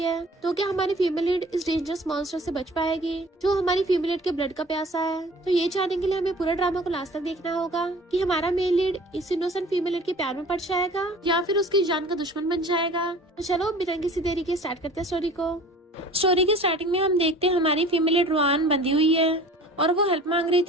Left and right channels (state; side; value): normal; both; correlation 0.45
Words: तो क्या हमारी फीमेल लीड इस डेंजरस मॉन्स्टर से बच पाएगी जो हमारी फीमेल लीड के ब्लड का प्यासा है? तो ये जानने के लिए हमें पूरा ड्रामा को लास्ट तक देखना होगा कि हमारा मेल लीड इस इनोसेंट फीमेल लीड के प्यार में पड़ जाएगा या फिर उसकी जान का दुश्मन बन जाएगा। तो चलो बिना किसी देरी के स्टार्ट करते हैं स्टोरी को। स्टोरी की स्टार्टिंग में हम देखते हैं हमारी फीमेल लीड रुआन बंधी हुई है और वो हेल्प मांग रही